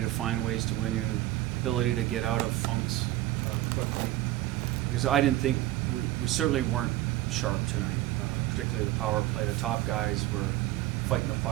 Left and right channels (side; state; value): left; quieter; 15.6 dB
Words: find ways to win, you ability to get out of funks quickly. Because I didn't think, we certainly weren't sharp tonight, particularly the power play. The top guys were fighting the